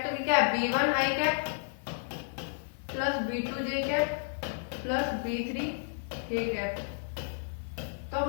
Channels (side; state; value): right; silent; digital silence